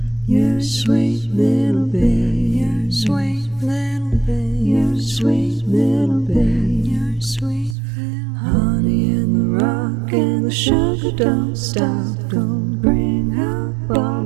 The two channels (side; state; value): left; drops out; at 7.8 s